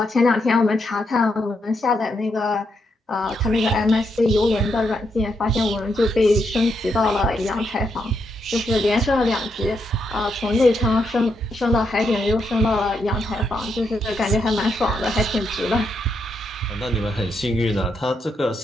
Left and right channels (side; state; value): both; normal; correlation 0.80